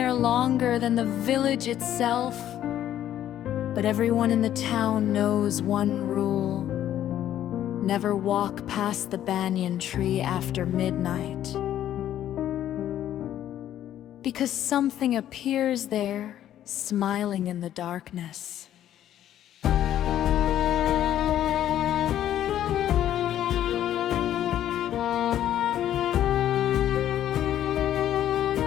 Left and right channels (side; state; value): right; quieter; 11.6 dB